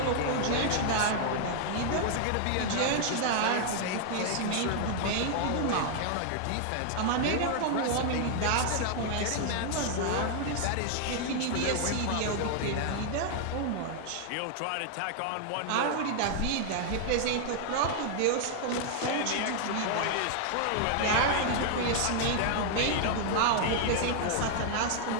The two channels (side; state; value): both; different; correlation 0.00